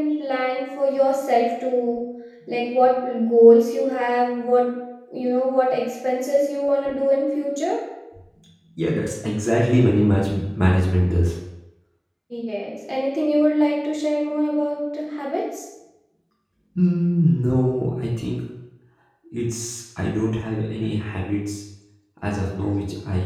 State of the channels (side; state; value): both; identical; correlation 1.00